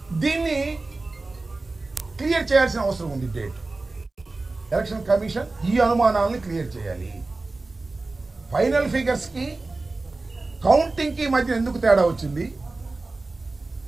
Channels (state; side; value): quieter; left; 3.4 dB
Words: దీన్ని క్లియర్ చేయాల్సిన అవసరం ఉంది. డేట్ ఎలక్షన్ కమిషన్ ఈ అనుమానాలను క్లియర్ చేయాలి. ఫైనల్ ఫిగర్స్కి కౌంటింగ్కి మధ్య ఎందుకు తేడా వచ్చింది?